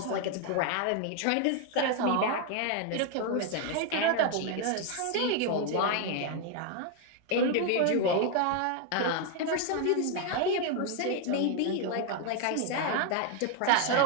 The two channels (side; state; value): both; different; correlation 0.01